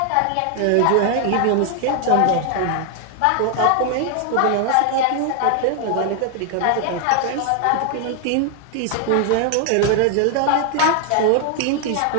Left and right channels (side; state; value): both; different; correlation 0.00